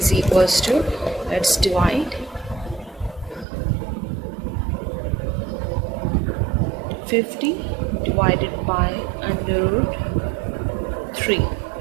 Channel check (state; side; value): drops out; left; at 3.5 s